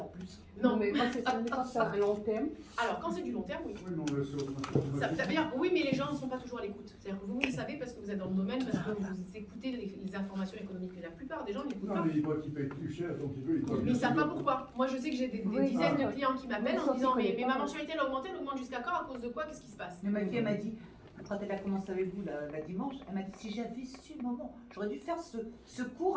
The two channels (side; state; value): both; identical; correlation 1.00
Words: plus. Non. Mais quand c'est à long terme, Alors quand c'est du long terme, oui. Oui, non, mais c'est Ça veut dire, oui, mais les gens ne sont pas toujours à l'écoute. C'est-à-dire que vous le savez parce que vous êtes dans le domaine, parce que vous écoutez les informations économiques. Mais la plupart des gens n'écoutent Non, pas. mais il voit qu'il paye plus cher, donc il veut. Mais ils ne savent pas pourquoi. Moi, je sais que j'ai des Oui, dizaines de ah, clients qui m'appellent en sauf disant qu'ils mais connaissent ma pas. mensualité elle augmente jusqu'à quand? À cause de quoi? Qu'est-ce qui se passe? Mais ma fille, elle m'a dit, quand elle a commencé avec vous la dimanche, elle m'a dit si j'avais su le moment, j'aurais dû faire ce cours